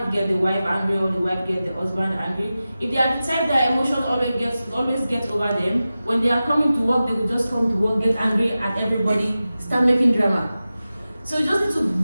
get the wife angry, or the wife get the husband angry. If they are the type that emotions always get over them, when they are coming to work, they will just come to work, get angry at everybody, start making drama. So you just need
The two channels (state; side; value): inverted; both; correlation -0.94